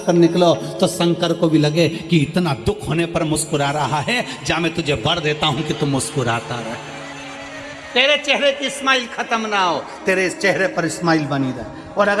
कर निकलो, तो शंकर को भी लगे कि इतना दुख होने पर मुस्कुरा रहा है, जा मैं तुझे वर देता हूं कि तू मुस्कुराता रहे, तेरे चेहरे की स्माइल खत्म ना हो, तेरे चेहरे पर स्माइल बनी रहे। और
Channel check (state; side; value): identical; both; correlation 1.00